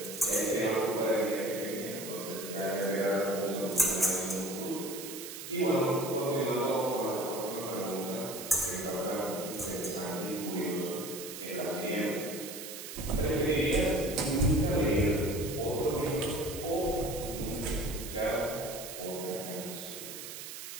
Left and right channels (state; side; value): noise; right; hiss, 10 dB below the sound